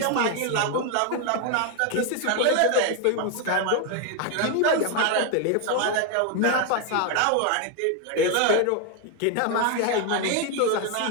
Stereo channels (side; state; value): both; different; correlation 0.01